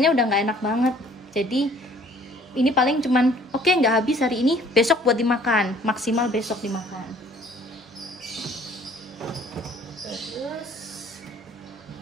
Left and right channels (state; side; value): normal; both; correlation 0.56